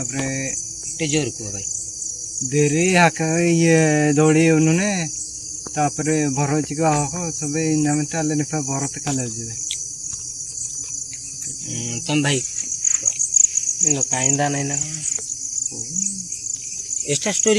ଟିକେ ଜୋର କୁହ ଭାଇ। ଦେରି ହାକା ଇଏ ଦୌଡ଼ି ଉନୁନେ ତାପରେ ଭରଚିକ ହକ ସବେ ନାମେ ତାଲେ ନିପା ଭରତ କାଲେ ଯିବେ। ତମ ଭାଇ କାଇନ୍ଦା ନାଇଁ ନା ଏଟା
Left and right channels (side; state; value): both; identical; correlation 1.00